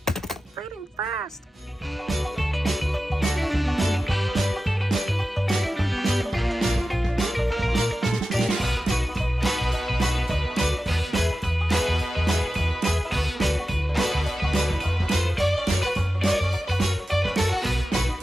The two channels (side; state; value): both; normal; correlation 0.94